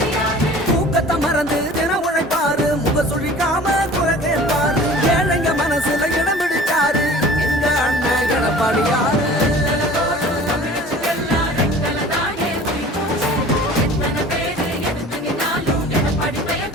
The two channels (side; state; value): both; normal; correlation 0.44